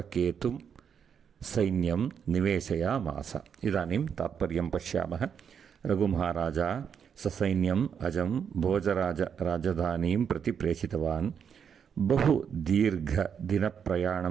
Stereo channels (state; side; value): quieter; left; 7.4 dB